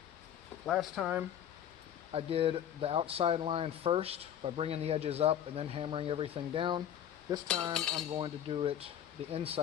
Last time I did the outside line first by bringing the edges up and then hammering everything down. This time I'm going to do it the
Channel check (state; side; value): quieter; right; 9.9 dB